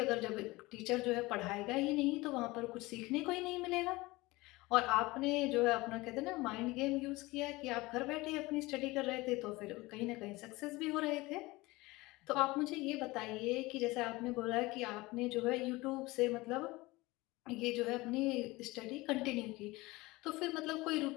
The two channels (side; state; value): right; quieter; 21.3 dB